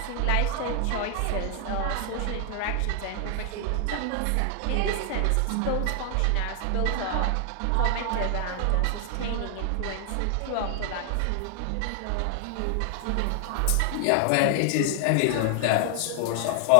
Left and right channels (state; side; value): different; both; correlation 0.00